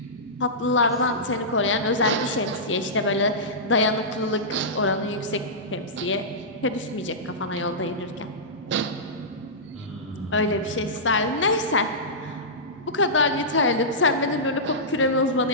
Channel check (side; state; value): both; normal; correlation -0.15